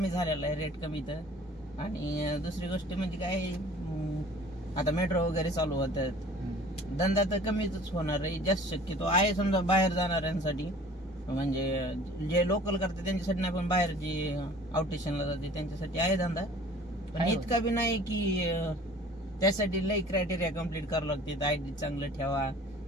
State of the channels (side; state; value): both; normal; correlation 0.48